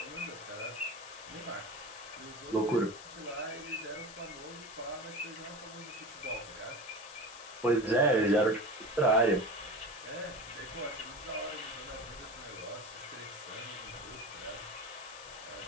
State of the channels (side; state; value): left; noise; hiss, 15 dB below the sound